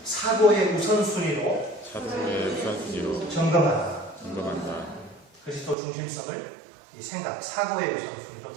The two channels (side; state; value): left; drops out; at 5.8 s